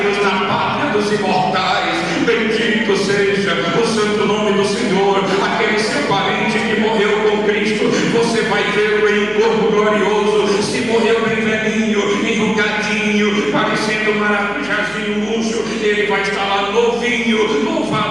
na pátria dos imortais. Bendito seja o santo nome do Senhor. Aquele seu parente que morreu com Cristo, você vai ver em um corpo glorioso. Se morreu bem velhinho, enrugadinho, parecendo um maracujazinho murcho, ele vai estar lá novinho.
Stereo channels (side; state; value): left; noise; hum, 21 dB below the sound